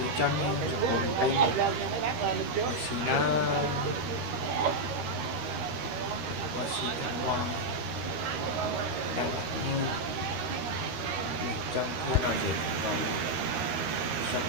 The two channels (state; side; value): late; left; 13 ms